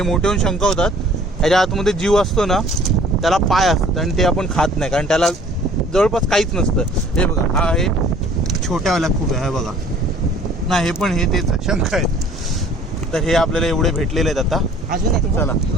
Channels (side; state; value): both; normal; correlation 0.53